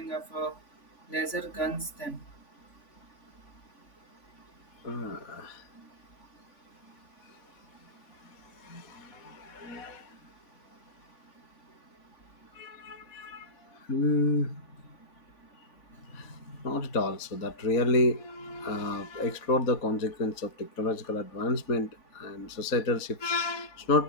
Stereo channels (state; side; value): late; right; 3.5 ms